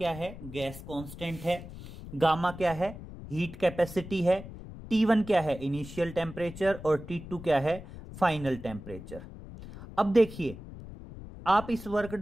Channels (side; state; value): left; noise; rumble, 13 dB below the sound